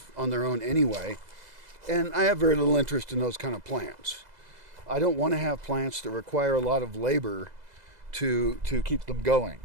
on their own anyway. And I have very little interest in those kind of plants. I don't want to have plants that require a lot of labor to keep them going.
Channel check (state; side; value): late; left; 2.0 ms